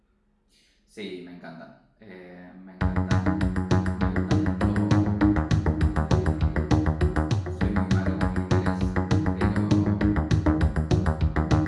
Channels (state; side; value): identical; both; correlation 1.00